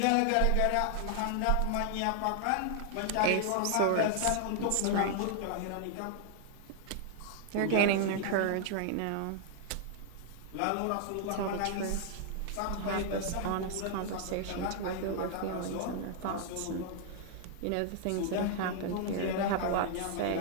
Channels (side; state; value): both; different; correlation 0.00